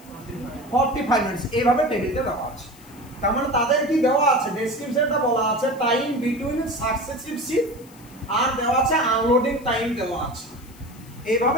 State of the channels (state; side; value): noise; left; hiss, 24 dB below the sound